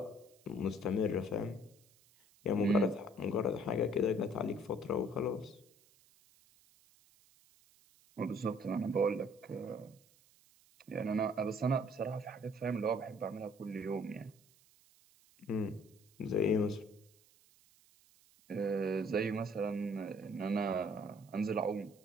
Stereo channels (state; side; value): noise; right; hiss, 29 dB below the sound